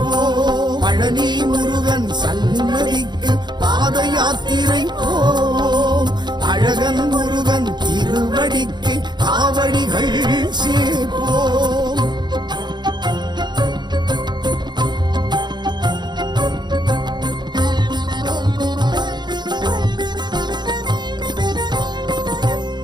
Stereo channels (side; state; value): left; late; 0.21 ms